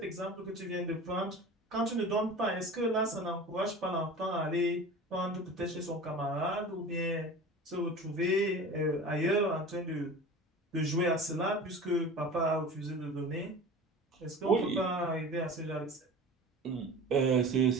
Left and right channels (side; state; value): both; normal; correlation 0.36